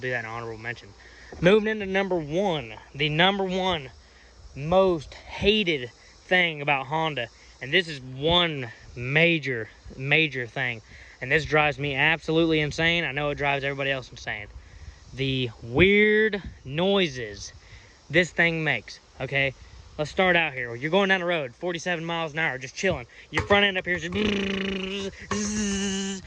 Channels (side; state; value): both; identical; correlation 1.00